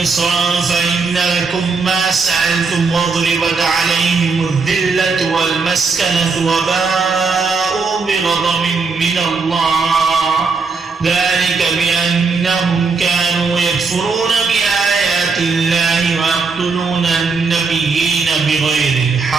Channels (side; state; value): left; quieter; 4.6 dB